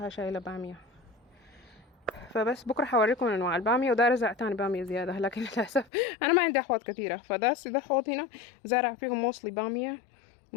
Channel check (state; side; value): drops out; right; at 5.9 s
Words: شايلة بامية. فبس بكره حوريكم انواع الباميه، وداير ازرع تاني باميه زياده، لكن للاسف انا ما عندي احواض كثيره. ده حوض هنا زارع فيهم موصلي باميه،